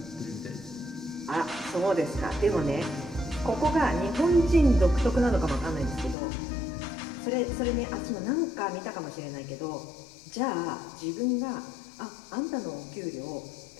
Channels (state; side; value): drops out; right; at 6.2 s